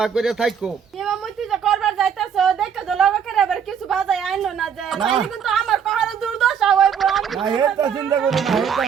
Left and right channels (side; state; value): left; quieter; 7.6 dB